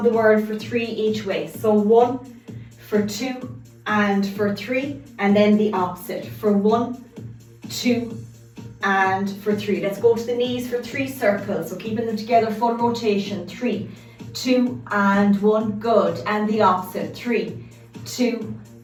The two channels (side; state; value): both; identical; correlation 1.00